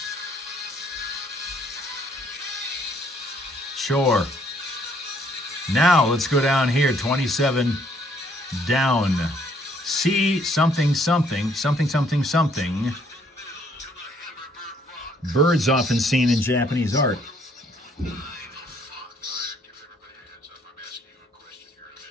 Sure. Now let's go down here, 27 down. C something something, something something something. Birds often seen in Japanese art.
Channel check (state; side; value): normal; both; correlation 0.65